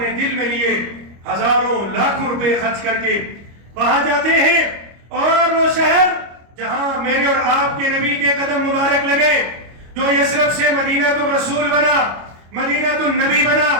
دل میں لیے ہزاروں لاکھوں روپے خرچ کر کے وہاں جاتے ہیں، اور وہ شہر جہاں میرے اور آپ کے نبی کے قدم مبارک لگے، جو یثرب سے مدینہ الرسول بنا، مدینہ النبی بنا،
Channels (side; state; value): left; late; 25 ms